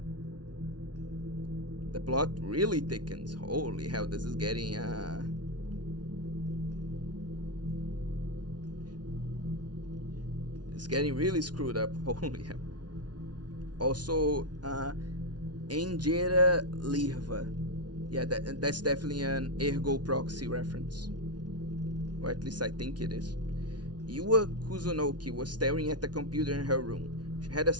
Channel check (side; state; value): left; late; 0.69 ms